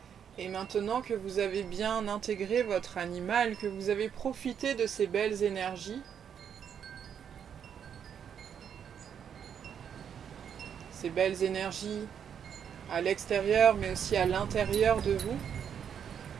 Et maintenant que vous avez bien intégré votre animal, que vous avez profité de ces belles énergies, à l'extérieur mais aussi à l'intérieur de vous,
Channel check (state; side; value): quieter; left; 8.1 dB